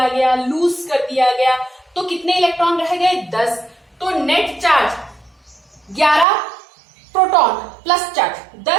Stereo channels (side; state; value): left; drops out; at 6.2 s